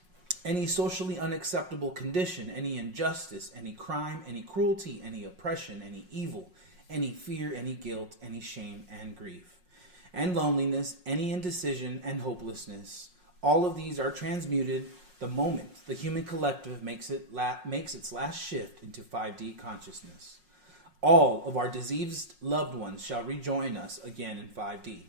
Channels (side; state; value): left; late; 5.5 ms